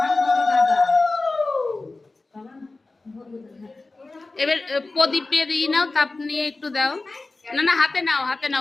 এবার প্রদীপে দিয়ে নাও, তাপ নিয়ে একটু দাও। না না, হাতে নাও, হাতে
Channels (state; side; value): quieter; right; 3.4 dB